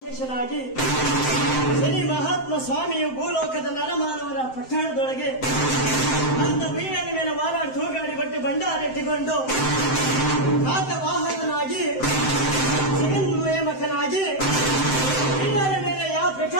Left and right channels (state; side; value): late; right; 7.7 ms